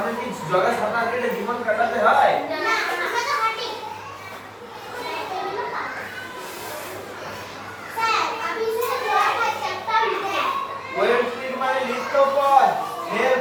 কি জলে সাঁতার কেটে জীবন কাটাতে হয়? ওয়েল ফিট মানে লিপ্তপদ,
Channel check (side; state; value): both; identical; correlation 1.00